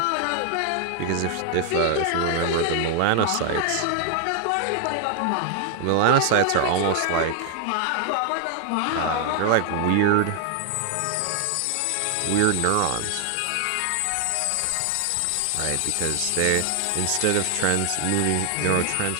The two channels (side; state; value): both; different; correlation 0.00